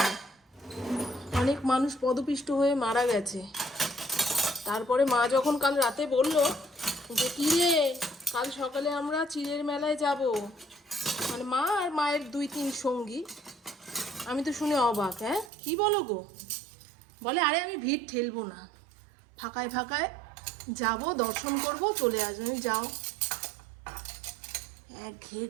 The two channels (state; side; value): drops out; left; at 15.5 s